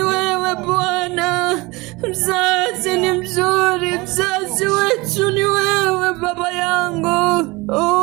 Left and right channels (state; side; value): quieter; left; 23.4 dB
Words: wewe Bwana. Mzazi ni mzuri, mzazi wetu ni wewe Baba yangu.